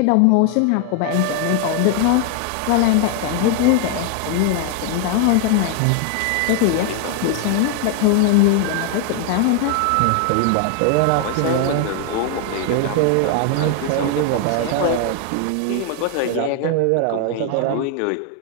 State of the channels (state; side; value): different; both; correlation 0.00